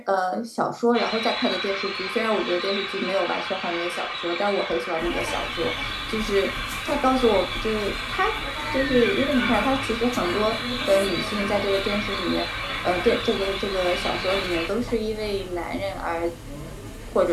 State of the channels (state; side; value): identical; both; correlation 1.00